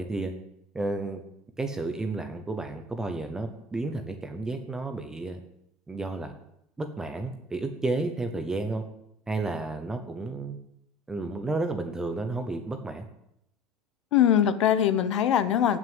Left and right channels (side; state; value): right; quieter; 3.4 dB